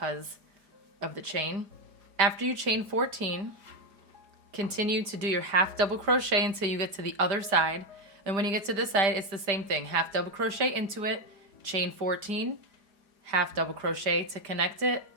of the chain. After you chain 14, continue to do your half double crochet until you get to the other side. And when you get to this side, it's the same thing. Half double crochet into it, chain 14, half double crochet to connect it,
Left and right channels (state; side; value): late; left; 4.9 ms